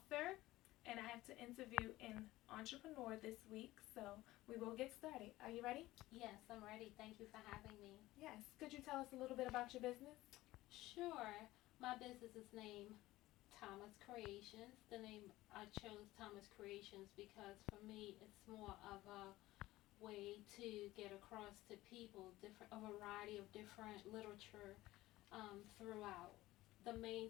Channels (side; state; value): right; quieter; 17.3 dB